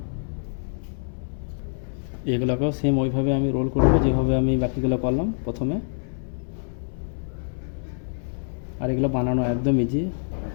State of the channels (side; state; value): right; silent; 61 dB below the other